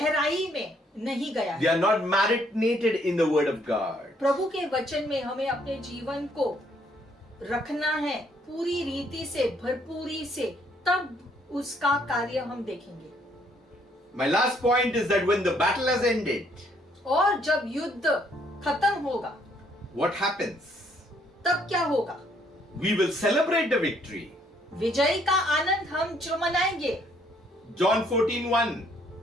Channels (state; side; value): normal; both; correlation 0.67